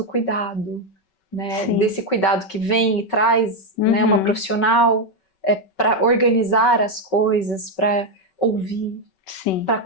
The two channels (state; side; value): late; right; 5.3 ms